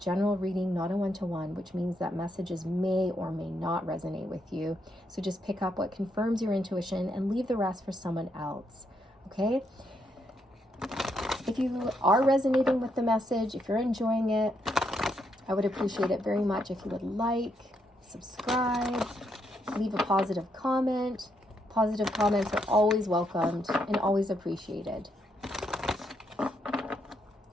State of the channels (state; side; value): normal; both; correlation 0.77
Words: reading, not a one-to-one, which means that messages may or may not resonate with you. So just pick up what confirms your intuition and leave the rest for someone else, okay? If you are resonating with the message, if you're enjoying it, I would appreciate it very much if you would like, subscribe, leave a positive comment. Positive comments are always welcomed and always appreciated.